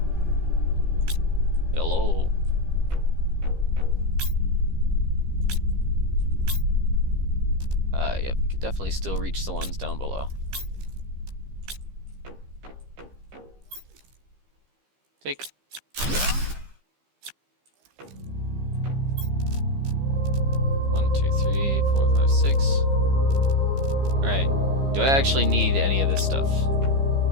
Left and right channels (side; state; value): left; late; 15 ms